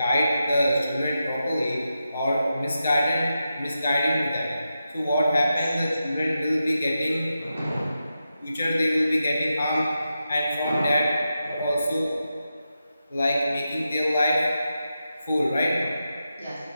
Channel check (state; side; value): inverted; both; correlation -0.89